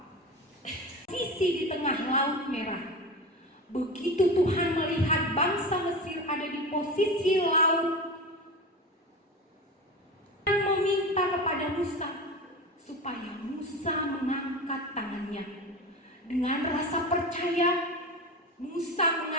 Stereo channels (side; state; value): both; normal; correlation 0.27